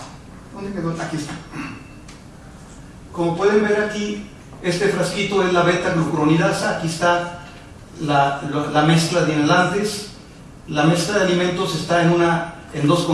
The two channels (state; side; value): identical; both; correlation 1.00